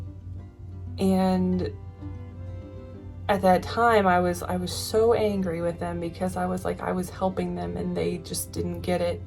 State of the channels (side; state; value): both; identical; correlation 1.00